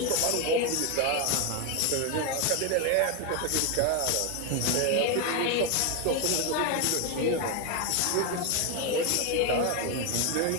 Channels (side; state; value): both; different; correlation 0.01